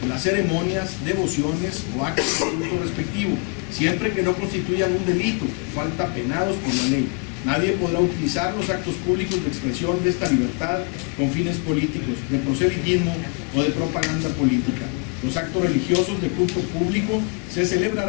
en las ceremonias, devociones o actos de culto respectivo, siempre que no constituyan un delito, falta penados por la ley. Nadie podrá utilizar los actos públicos de expresión de esta libertad con fines políticos, de proselitismo o de propaganda política. Los actos religiosos de culto público se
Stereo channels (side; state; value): right; quieter; 33.7 dB